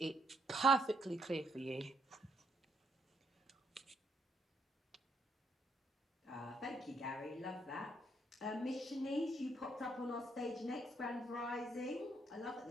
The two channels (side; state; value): both; normal; correlation 0.73